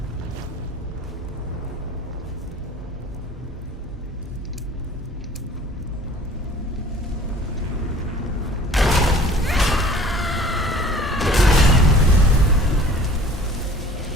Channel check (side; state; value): both; normal; correlation 0.48